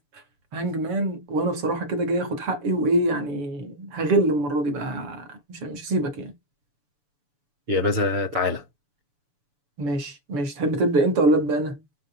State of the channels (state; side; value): late; left; 7.0 ms